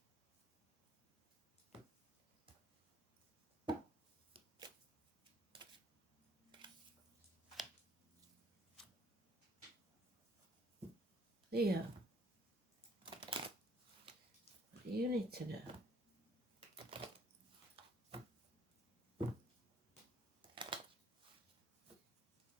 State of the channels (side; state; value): both; normal; correlation 0.62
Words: Leo, what do you need to know?